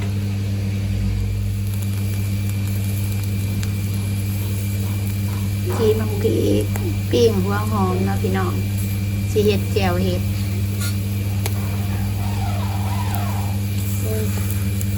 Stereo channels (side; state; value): both; identical; correlation 1.00